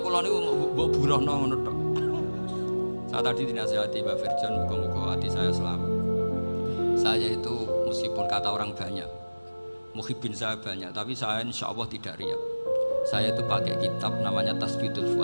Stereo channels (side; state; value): both; inverted; correlation -1.00